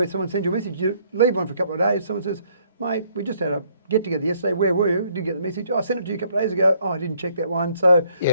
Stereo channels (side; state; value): both; inverted; correlation -0.66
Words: someone sends you a message. You leave one for a couple of days, someone says, mate, we just had a get-together yesterday, where were you? Didn't get the message. Oh, I sent it to you a couple of days ago. Oh, I didn't check that one. So